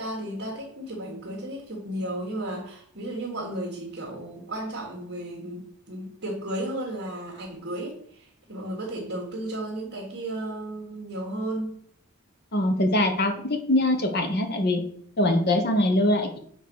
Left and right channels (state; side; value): normal; both; correlation 0.40